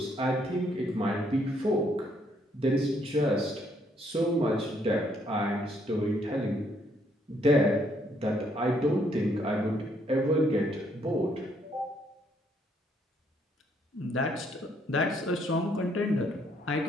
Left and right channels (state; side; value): normal; both; correlation 0.70